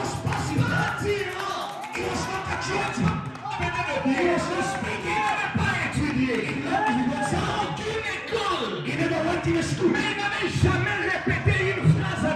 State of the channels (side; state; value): both; identical; correlation 1.00